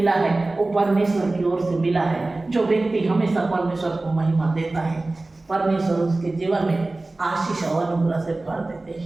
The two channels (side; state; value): left; quieter; 3.0 dB